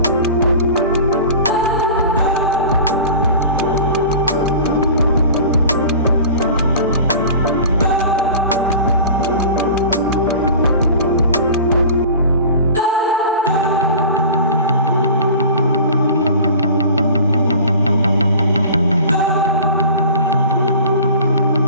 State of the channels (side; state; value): both; inverted; correlation -0.39